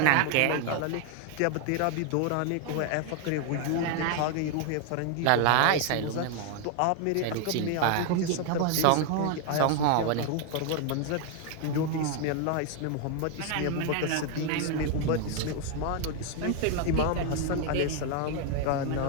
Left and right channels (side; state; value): both; different; correlation 0.00